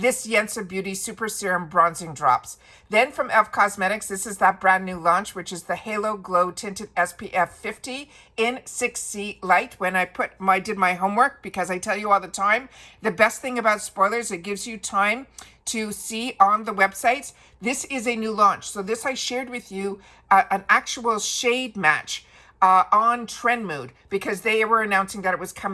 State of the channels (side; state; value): both; identical; correlation 1.00